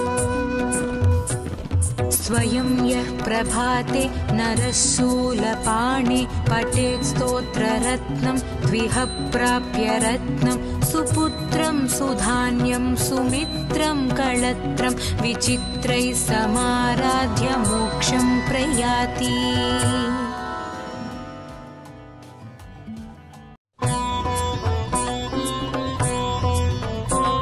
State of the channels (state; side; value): identical; both; correlation 1.00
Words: स्वयं यः प्रभाते नरः शूलपाणे पठेत् स्तोत्ररत्नं द्विह प्राप्य रत्नं सुपुत्रं सुधान्यं सुमित्रं कळत्रं विचित्रैः समाराध्य मोक्षं प्रयाति